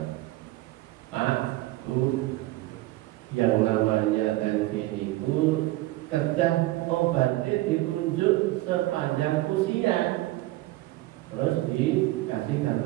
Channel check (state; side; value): quieter; left; 18.2 dB